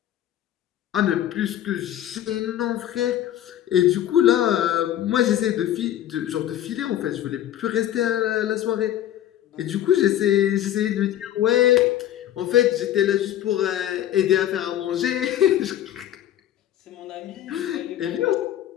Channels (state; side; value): quieter; right; 12.0 dB